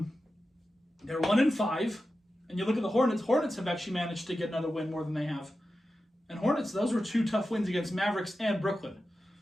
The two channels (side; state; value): both; normal; correlation 0.92